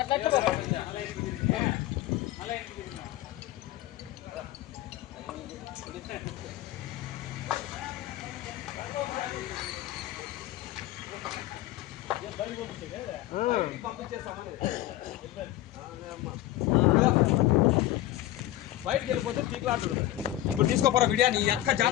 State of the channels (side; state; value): right; quieter; 14.8 dB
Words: పంపించేస్తామని బయటకు వెళ్ళిపోతే పీకులాడుతుంది. ఇప్పుడు తీసుకోపోరా వీడియో నీ అక్క